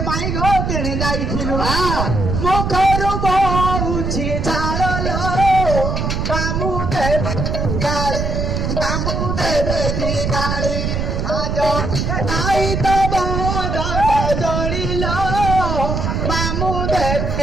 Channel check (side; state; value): right; noise; rumble, 1 dB below the sound